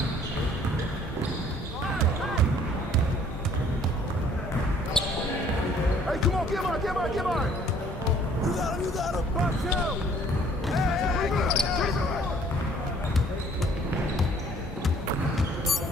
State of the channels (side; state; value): both; normal; correlation 0.57